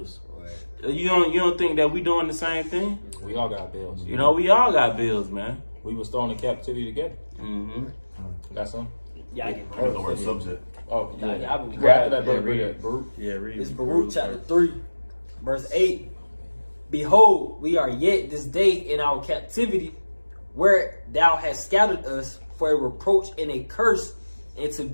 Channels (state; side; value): inverted; both; correlation -1.00